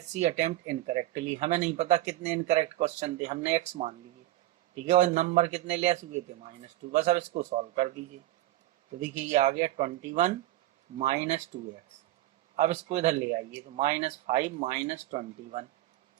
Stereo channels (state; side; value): quieter; left; 15.5 dB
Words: she attempt incorrectly, हमें नहीं पता कितने इनकरेक्ट क्वेश्चन थे, हमने x मान लिए। ठीक है, और नंबर कितने लेस हुए थे, -2। बस अब इसको सॉल्व कर दीजिए। तो देखिए ये आ गया 21 - 2x। अब इसको इधर ले आइए, तो -5 - 21